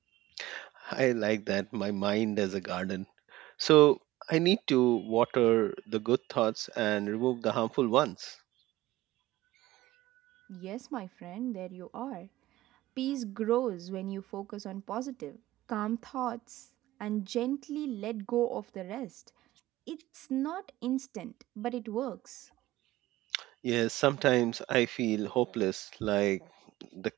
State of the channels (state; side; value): quieter; left; 17.1 dB